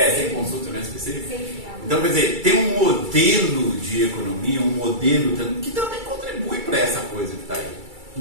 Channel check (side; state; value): left; late; 2.3 ms